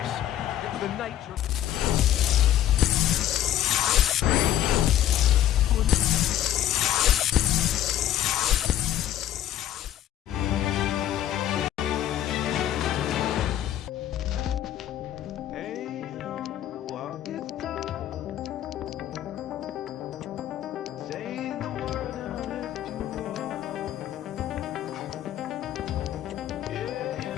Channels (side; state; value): right; quieter; 11.9 dB